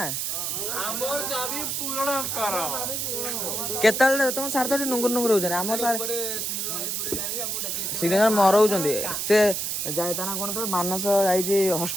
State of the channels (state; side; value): noise; right; hiss, 1 dB below the sound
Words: हमर दाबी पूर्ण कर केतल तुम सार तो नुंगुर नुंगुर हो जाने हम सार सिग्नेचर मरौଛନ୍ତି से जाय ता ना कोन तो मानस जाई छी